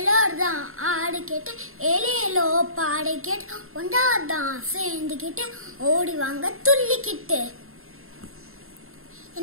ஆடு கேட்டு, எலியலோ பாடு கேட்டு, ஒன்றாதான் சேர்ந்துக்கிட்டு, ஓடி வாங்க துள்ளிக்கிட்டு.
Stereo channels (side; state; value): left; late; 0.61 ms